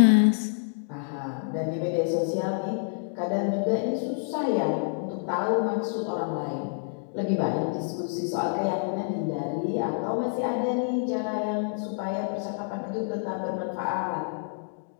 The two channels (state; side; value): silent; right; digital silence